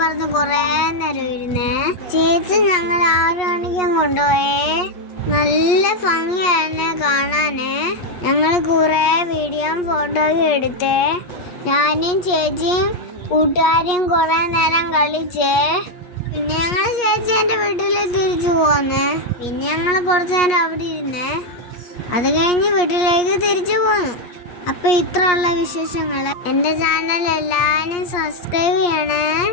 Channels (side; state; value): right; late; 8.4 ms